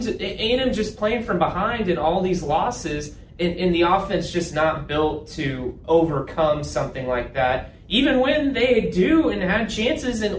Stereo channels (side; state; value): both; identical; correlation 1.00